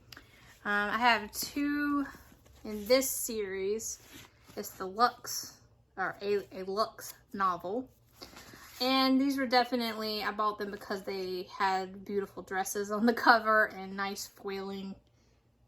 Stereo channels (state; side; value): identical; both; correlation 1.00